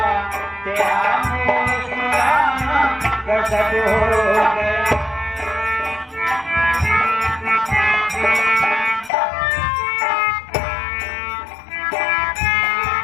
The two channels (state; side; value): drops out; right; at 9.1 s